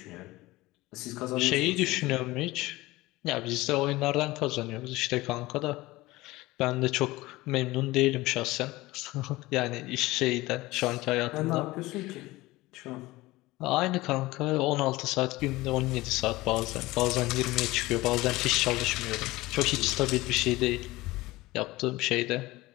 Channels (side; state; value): right; quieter; 19.5 dB